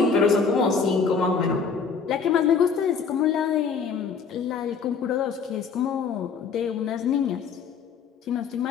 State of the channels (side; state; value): right; quieter; 5.7 dB